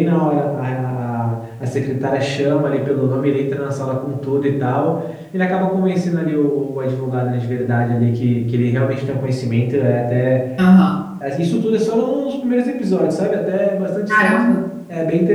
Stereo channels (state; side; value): identical; both; correlation 1.00